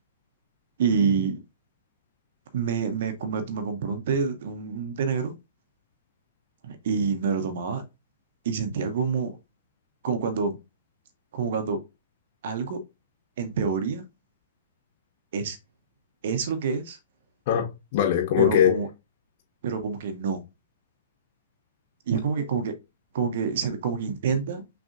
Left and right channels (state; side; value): inverted; both; correlation -0.42